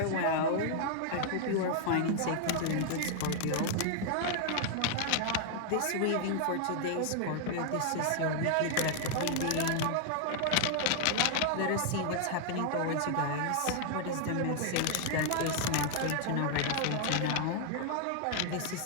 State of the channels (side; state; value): both; different; correlation 0.00